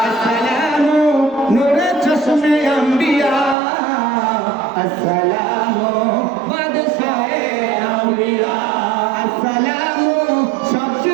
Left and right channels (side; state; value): left; drops out; at 3.6 s